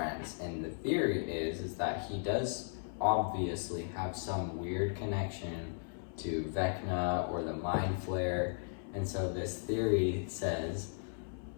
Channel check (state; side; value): silent; right; 54 dB below the other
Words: And the theory is that he does obviously have some weird connection to Vecna or the Mind Flayer. And so this theory says